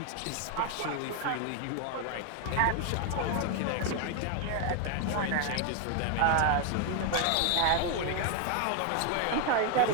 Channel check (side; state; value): both; different; correlation 0.00